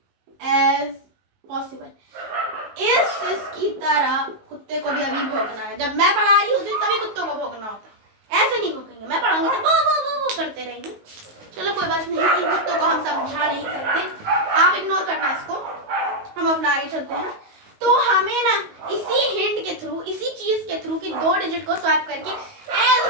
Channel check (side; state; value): left; late; 19 ms